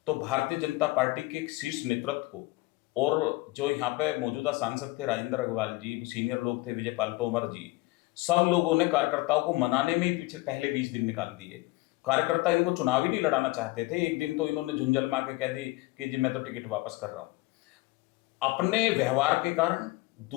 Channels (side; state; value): right; quieter; 21.2 dB